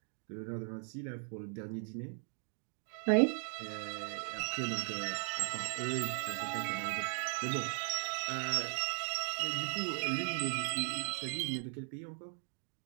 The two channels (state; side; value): silent; left; 53 dB below the other